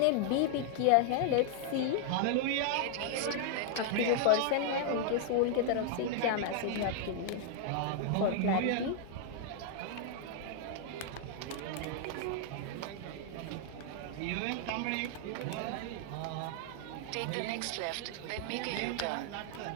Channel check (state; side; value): different; both; correlation 0.00